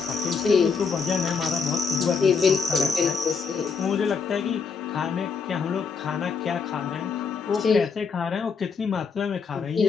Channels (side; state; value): right; quieter; 5.3 dB